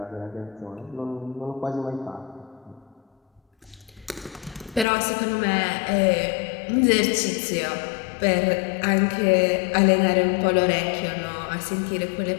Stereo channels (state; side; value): drops out; right; at 4.9 s